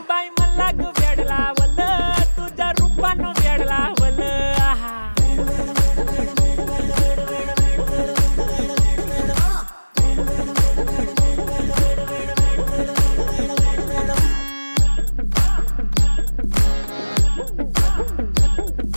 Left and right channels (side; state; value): both; inverted; correlation -1.00